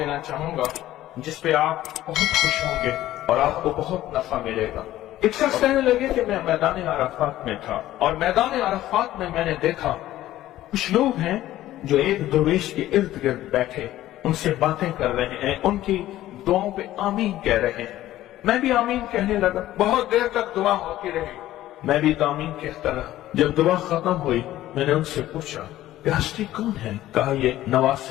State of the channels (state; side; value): quieter; right; 14.4 dB